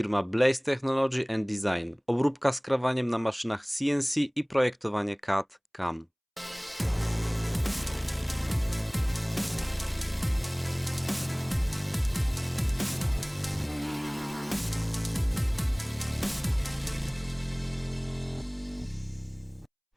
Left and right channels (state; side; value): identical; both; correlation 1.00